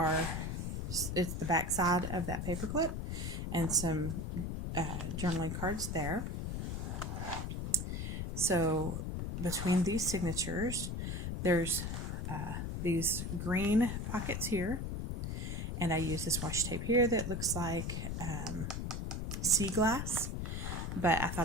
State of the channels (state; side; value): noise; left; rumble, 3 dB below the sound